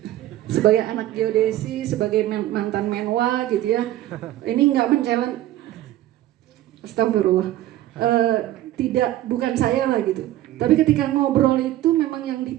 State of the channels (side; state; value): left; quieter; 14.4 dB